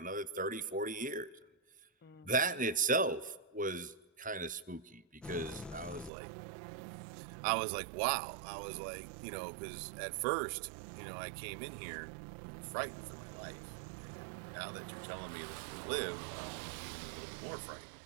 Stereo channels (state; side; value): drops out; left; at 6.1 s